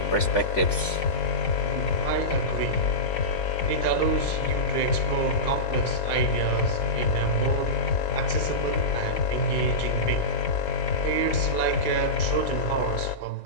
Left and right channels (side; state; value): right; late; 3.5 ms